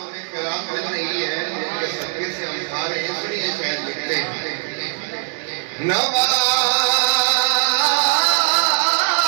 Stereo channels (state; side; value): silent; left; 59 dB below the other